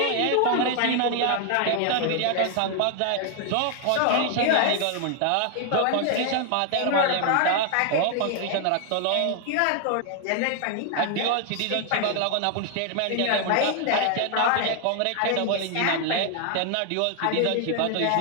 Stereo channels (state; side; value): different; both; correlation 0.00